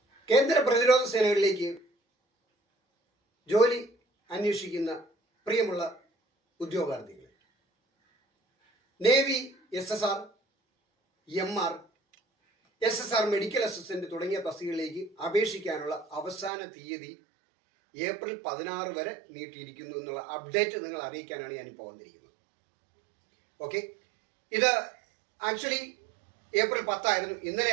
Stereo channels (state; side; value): drops out; left; at 16.5 s